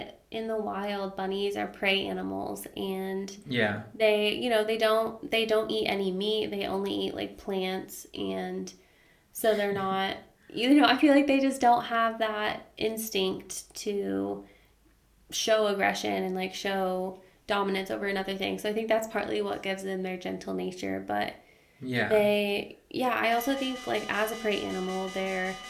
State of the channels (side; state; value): both; identical; correlation 1.00